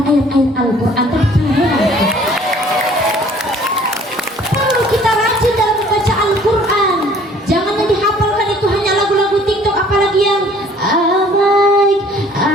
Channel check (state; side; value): normal; both; correlation 0.55